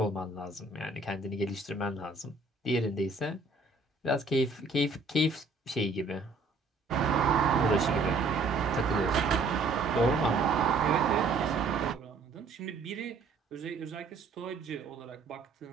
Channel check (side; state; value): left; quieter; 3.7 dB